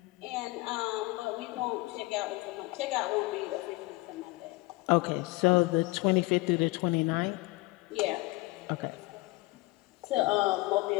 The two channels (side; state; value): right; quieter; 22.5 dB